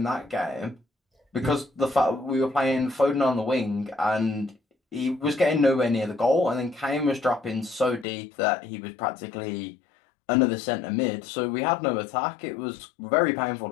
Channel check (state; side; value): drops out; right; at 8.1 s